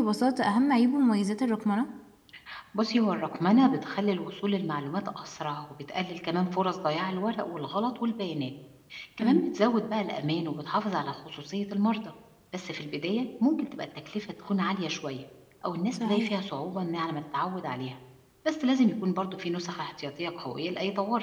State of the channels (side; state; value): both; identical; correlation 1.00